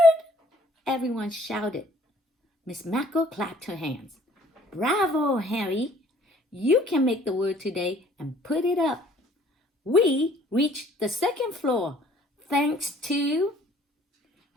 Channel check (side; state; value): both; normal; correlation 0.58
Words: Everyone shouted. Miss Macko clapped her hands. Bravo, Harry! You can make the word today and put it up. We reached the second floor, thanks to...